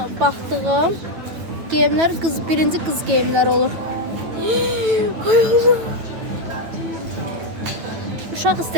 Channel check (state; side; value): late; left; 9.0 ms